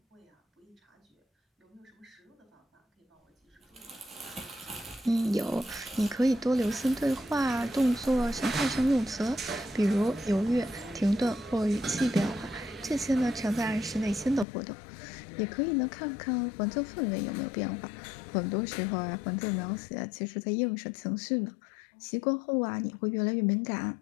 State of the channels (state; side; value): drops out; right; at 14.5 s